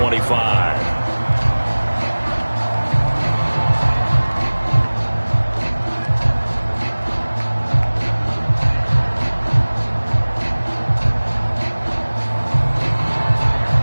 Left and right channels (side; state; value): both; inverted; correlation -1.00